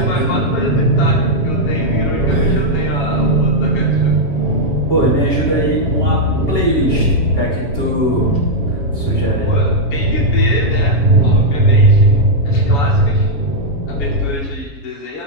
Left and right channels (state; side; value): late; right; 7.1 ms